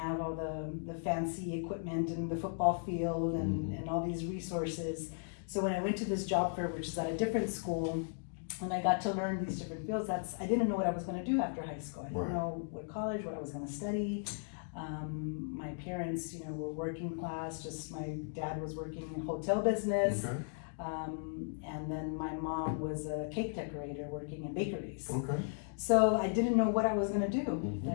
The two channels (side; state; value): right; silent; digital silence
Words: all the fancy equipment and the football field and all these resources. So when I went to this job fair, which is at a different school, and I got to learn these different fields, I didn't know what I was going to do after high school. I didn't know what college, what I was going to study. My parents, were working class. Just my dad was working in hotel business. Okay. And then my mom was a cake decorator working in bakeries. Okay. So I didn't know what I was going to do.